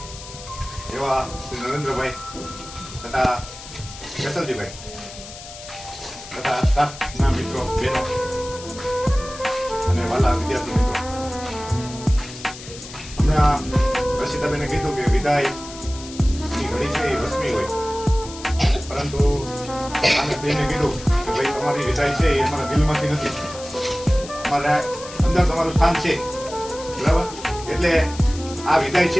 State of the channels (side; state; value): left; noise; hiss, 14 dB below the sound